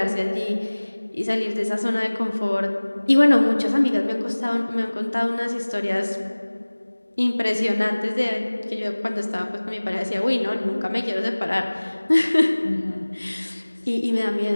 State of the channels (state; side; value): inverted; both; correlation -1.00